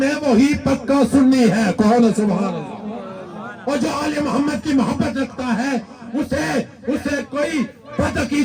میں وہی پکا سنی ہے. کہو نا سبحان اللہ. اور جو آل محمد کی محبت رکھتا ہے اسے کوئی بد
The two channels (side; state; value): both; identical; correlation 1.00